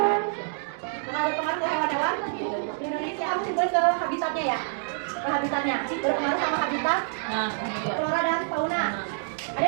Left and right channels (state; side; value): silent; left; digital silence